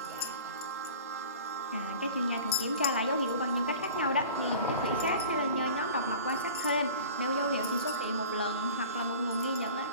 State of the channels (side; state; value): both; inverted; correlation -0.42